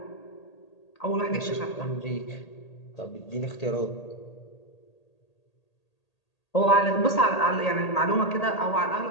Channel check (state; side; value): late; right; 1.8 ms